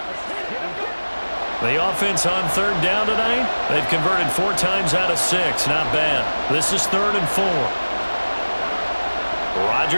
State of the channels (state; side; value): inverted; both; correlation -1.00